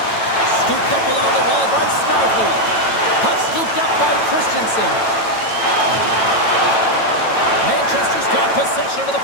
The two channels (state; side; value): late; right; 9.0 ms